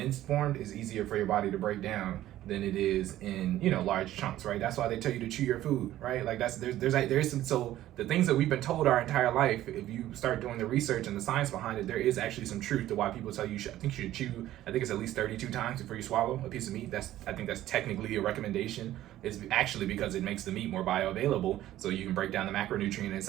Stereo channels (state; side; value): quieter; left; 13.9 dB